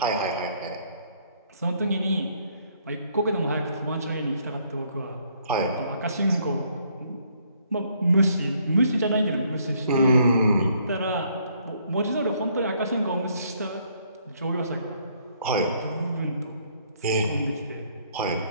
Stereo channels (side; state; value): both; inverted; correlation -0.67